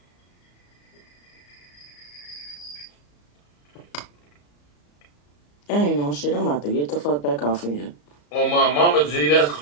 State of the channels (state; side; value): late; right; 34 ms